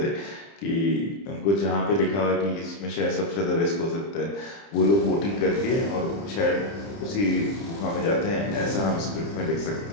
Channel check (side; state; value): right; late; 30 ms